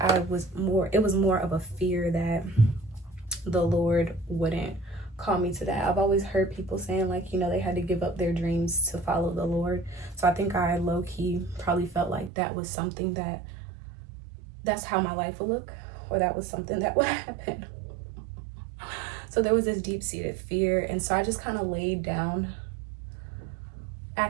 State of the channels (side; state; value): left; drops out; at 12.3 s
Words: it was more of a fear that the Lord wouldn't call me to that. I've always heard people saying, like, you know, they had to give up their dreams to follow the Lord. So I think I low key probably felt like that was something that's how my life would look, or that was something that would happen. So there was this deep-seated fear, and so I just kind of laid down